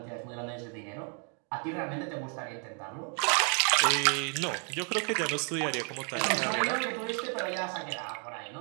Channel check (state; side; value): quieter; left; 39.9 dB